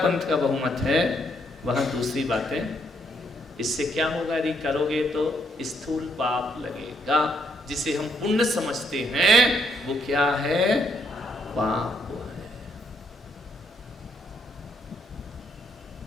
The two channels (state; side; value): normal; both; correlation 0.73